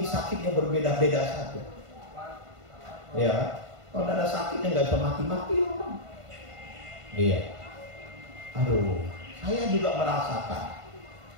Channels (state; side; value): late; left; 1.5 ms